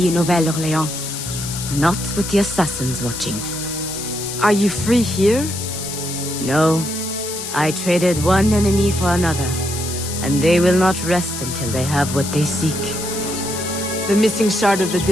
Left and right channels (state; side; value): noise; left; hiss, 7 dB below the sound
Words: in Nouvelle-Orléans. Not with the assassins watching. Are you free here? No. I traded one enemy for another, and they will not rest until they have what they seek. The missing shard of the